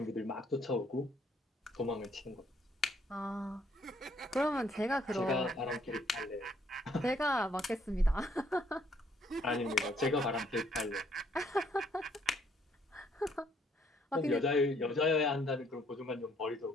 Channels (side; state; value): both; normal; correlation 0.67